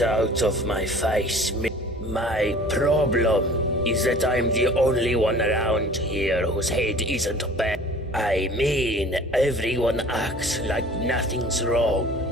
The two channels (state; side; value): normal; both; correlation 0.47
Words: out of my face. My problem is that I'm the only one around here whose head isn't bad. I mean, everyone acts like nothing's wrong.